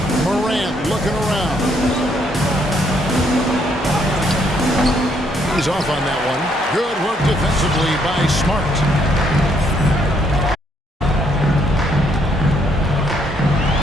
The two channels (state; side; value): normal; both; correlation 0.70